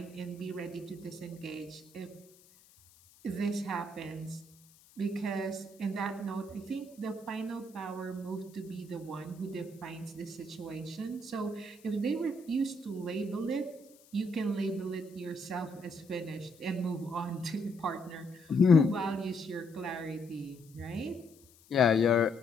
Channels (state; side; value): noise; left; hiss, 26 dB below the sound